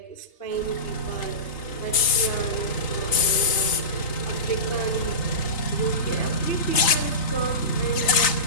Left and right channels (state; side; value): late; right; 3.3 ms